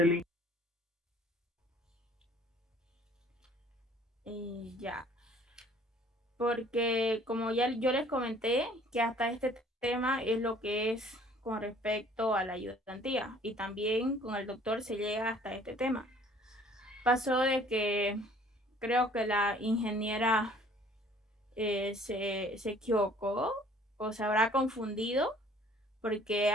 Ya. Porque como ya yo les comenté, que hasta este tema es lo que es con respecto a la ayudantía y también con el doctor se llega hasta este tema. Pasó de que creo que la ingeniera se equivocó o se habrá confundido porque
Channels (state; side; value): normal; both; correlation 0.55